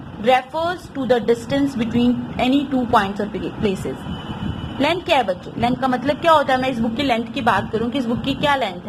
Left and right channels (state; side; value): identical; both; correlation 1.00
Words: refers to the distance between any 2 points और प्लेसेस। लेंथ क्या है बच्चों, लेंथ का मतलब क्या होता है, मैं इस बुक की लेंथ की बात करूं कि इस बुक की क्या लेंथ